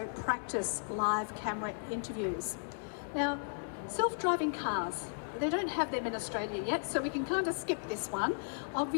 practice live camera interviews. Now, self-driving cars. they don't have them in Australia yet, so we can kind of skip this one.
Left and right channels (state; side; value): silent; right; digital silence